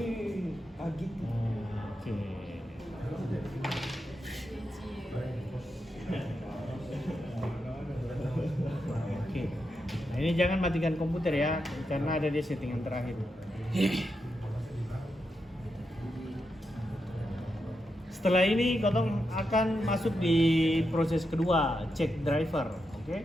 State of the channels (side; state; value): both; normal; correlation 0.86